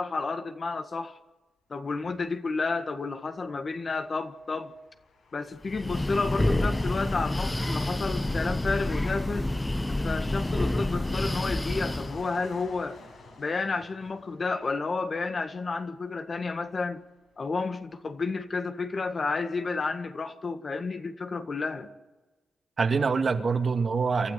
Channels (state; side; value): normal; both; correlation 0.92